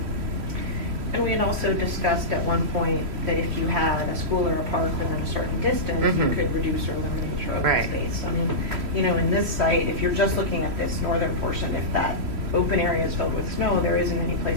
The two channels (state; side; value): late; left; 3.1 ms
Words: And we had also discussed at one point that if you had a school or a park within a certain distance, you Mhm. could reduce or eliminate your open Right. space. I mean, in this site, if you're just looking at this northern portion, if that open area is filled with snow, there isn't any